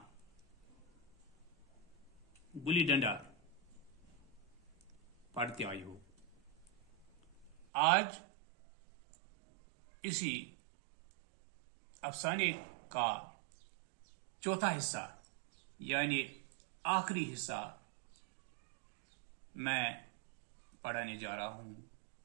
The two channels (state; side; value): drops out; left; at 7.6 s